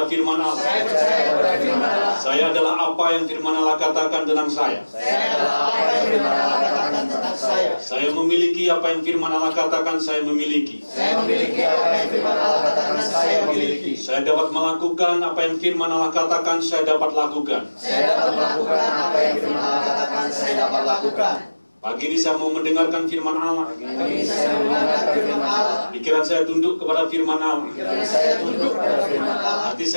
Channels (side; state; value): both; inverted; correlation -1.00